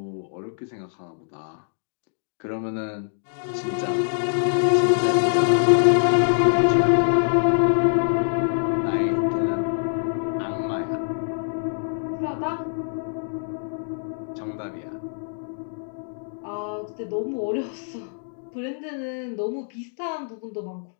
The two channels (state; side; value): silent; right; digital silence